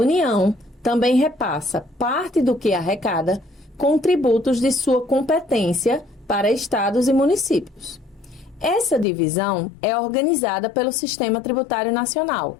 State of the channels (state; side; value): drops out; right; at 9.1 s